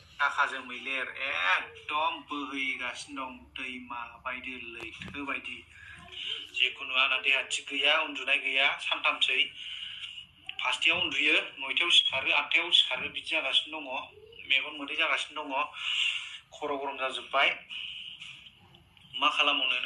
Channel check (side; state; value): both; identical; correlation 1.00